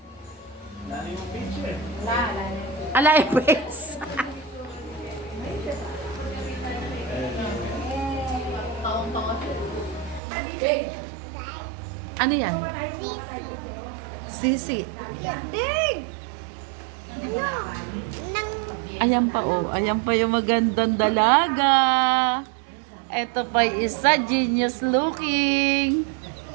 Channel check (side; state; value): left; drops out; at 10.2 s